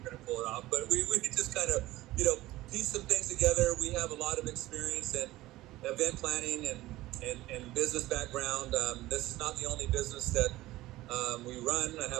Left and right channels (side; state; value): left; quieter; 17.2 dB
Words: to pull it off. But we just kind of, piece some things together. We have a lot of experience in event planning and business background. This is not the only business that we run. I